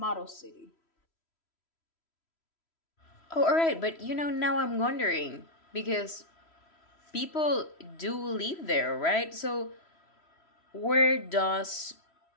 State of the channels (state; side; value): late; right; 3.1 ms